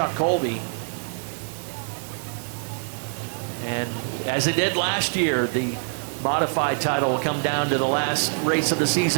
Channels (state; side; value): silent; left; digital silence